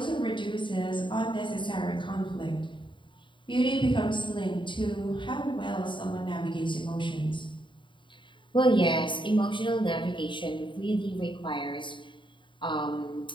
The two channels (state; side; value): late; right; 0.23 ms